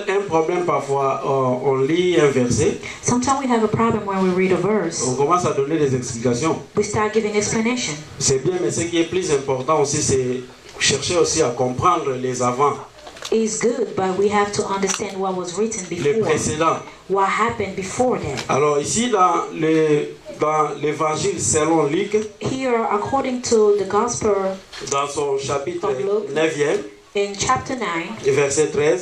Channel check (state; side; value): identical; both; correlation 1.00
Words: problème parfois, on lit un verset, Sometimes we have a problem when we read a verse. on commence à donner des explications. We start giving explanation. C'est bien, mais ce qui est plus important aussi, c'est chercher aussi à comprendre les avant, It's good, but we have to understand what was written les before. précédents. What happened before that. Alors ici, dans l'évangile selon Luc, Here, according to the gospel dans son chapitre of Luke, 9e, in chapter 9, verset